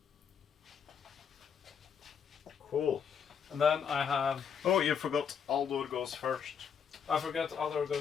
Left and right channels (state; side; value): quieter; right; 7.3 dB